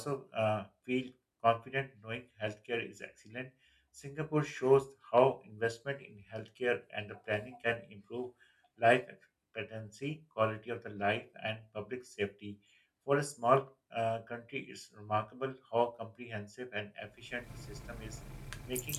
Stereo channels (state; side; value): identical; both; correlation 1.00